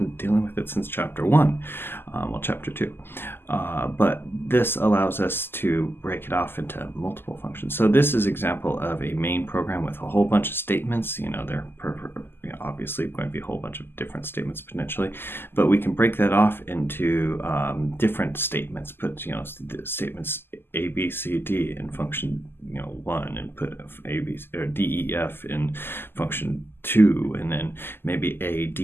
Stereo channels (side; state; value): right; late; 0.11 ms